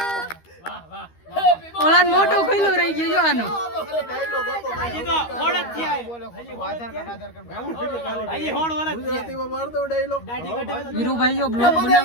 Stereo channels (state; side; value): late; right; 13 ms